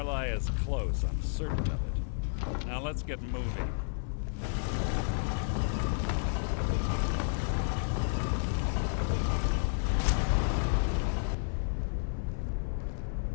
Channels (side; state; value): right; silent; digital silence